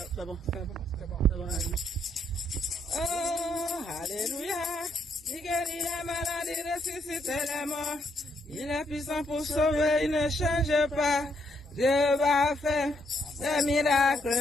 bon. Oh, alléluia. Il guérit les malades, il ressuscite les morts. Il est puissant pour sauver, il ne change pas. Dieu va faire des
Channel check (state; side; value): normal; both; correlation 0.74